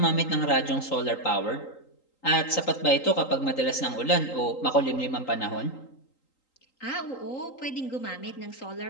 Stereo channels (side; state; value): right; late; 3.8 ms